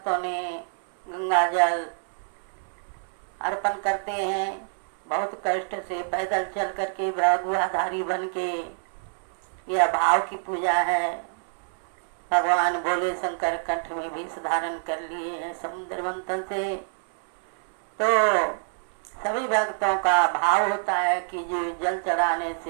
ने गंगा जल अर्पण करते हैं। बहुत कष्ट से पैदल चल करके भगवाधारी बन के, यह भाव की पूजा है। भगवान भोले शंकर कंठ में भी धारण कर लिए हैं समुद्र मंथन से। तो सभी भक्तों का भाव होता है कि जो जल चढ़ाने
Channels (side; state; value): left; silent; 61 dB below the other